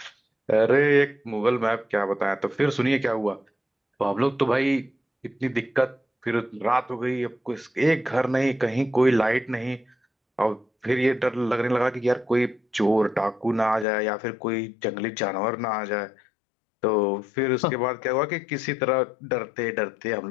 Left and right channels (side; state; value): right; drops out; at 13.9 s